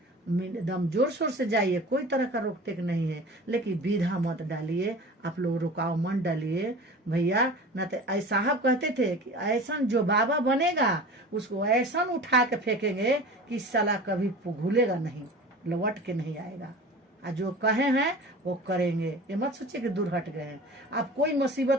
एकदम जोर शोर से जाइए, कोई तरह का रोक टेक नहीं है, लेकिन विधा मत डालिए, आप लोग रुकाव मत डालिए भैया। न तो साहब कहते थे कि ऐसा जो बाबा बनेगा उसको ऐसा उठा के फेंकेंगे कि साला कभी भूलेगा नहीं, लौट के नहीं आएगा। और जो कहे हैं वो करेंगे, ये मत सोचिए कि दूर हट गए हैं। आप कोई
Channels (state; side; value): normal; both; correlation 0.38